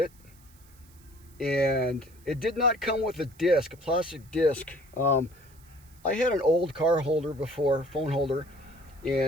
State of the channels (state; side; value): noise; right; hiss, 28 dB below the sound